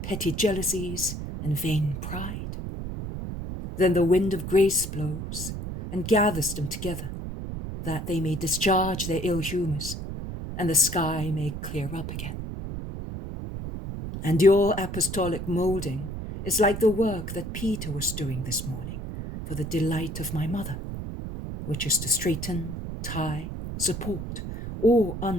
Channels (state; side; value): noise; right; rumble, 6 dB below the sound